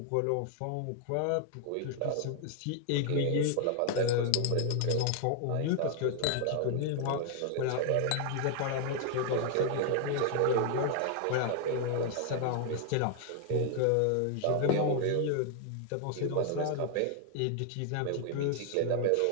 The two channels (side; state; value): both; different; correlation 0.00